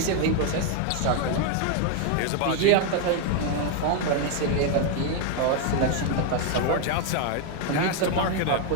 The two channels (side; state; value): both; different; correlation 0.01